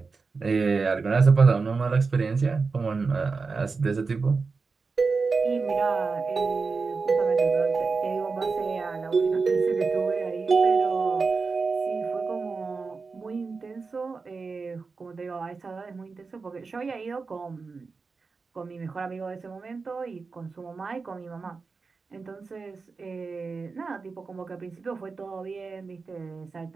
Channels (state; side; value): quieter; left; 4.5 dB